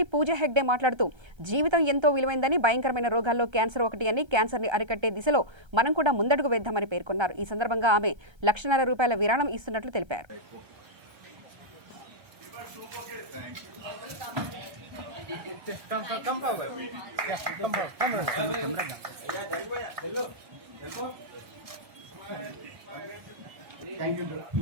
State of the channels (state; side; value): late; left; 1.3 ms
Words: పూజా హెగ్డే మాట్లాడుతూ జీవితం ఎంతో విలువైందని, భయంకరమైన రోగాల్లో క్యాన్సర్ ఒకటి అని, క్యాన్సర్ని అరికట్టే దిశలో మనం కూడా ముందడుగు వేద్దామని పేర్కొన్నారు. ఈ సందర్భంగా ఆమె ₹1,00,000 విరాళం ఇస్తున్నట్లు తెలిపారు. Thank you,